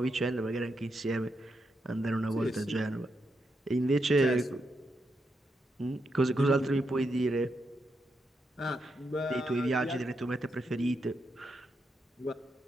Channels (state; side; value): normal; both; correlation 0.83